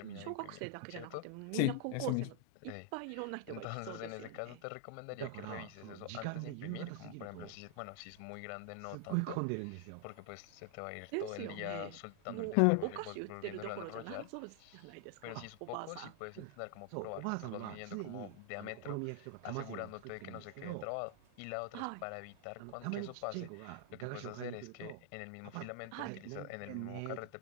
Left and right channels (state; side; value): different; both; correlation 0.00